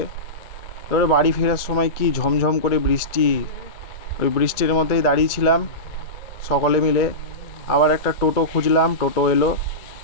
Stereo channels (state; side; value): late; right; 2.2 ms